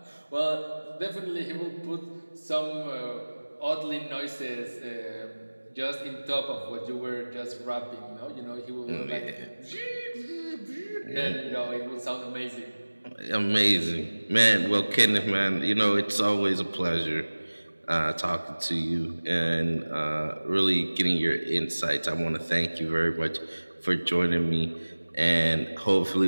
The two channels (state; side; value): inverted; both; correlation -1.00